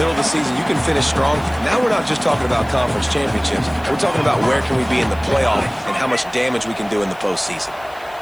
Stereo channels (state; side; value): noise; left; hiss, 26 dB below the sound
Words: of the season, you can finish strong. Now we're not just talking about conference championships. We're talking about where can we be in the playoff and how much damage we can do in the postseason.